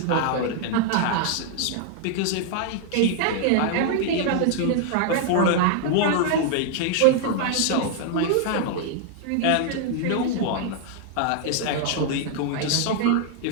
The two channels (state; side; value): different; both; correlation 0.00